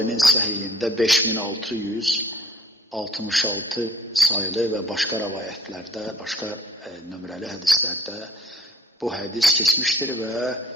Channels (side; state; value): both; normal; correlation 0.55